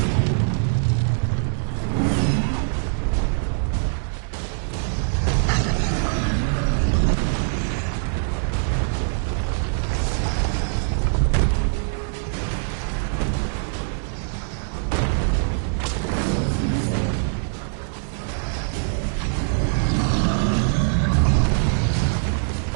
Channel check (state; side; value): silent; left; digital silence